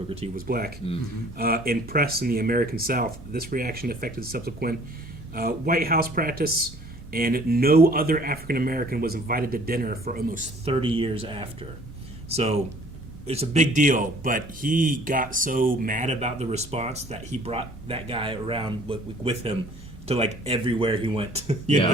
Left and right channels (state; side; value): normal; both; correlation 0.54